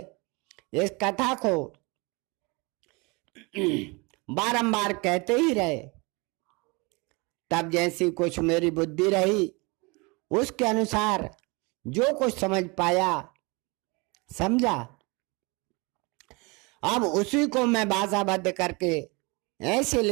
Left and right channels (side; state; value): left; quieter; 27.8 dB